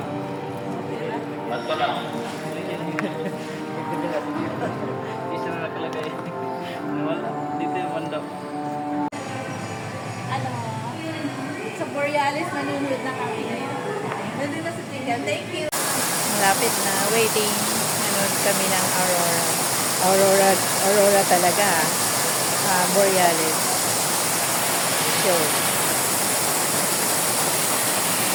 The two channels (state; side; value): identical; both; correlation 1.00